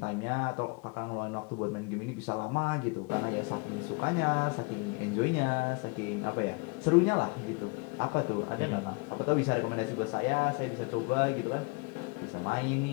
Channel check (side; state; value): right; quieter; 30.3 dB